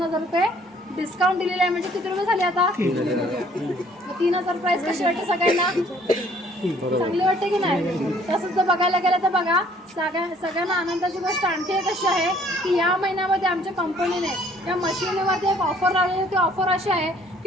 रुपये डिस्काउंट दिलेलं आहे. म्हणजे किती रुपये झाले आता? 3,000 प्राईस कशी वाटते सगळ्यांना? चांगली वाटते की नाही? तसंच जर बघायला गेलं तर बघा, सगळ्यांना आनंदाची गोष्ट आणखी एक अशी आहे की या महिन्यामध्ये आमच्या कंपनीने या मशिनीवरती एक ऑफर लावलेली. ती ऑफर अशी आहे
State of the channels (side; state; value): both; normal; correlation 0.60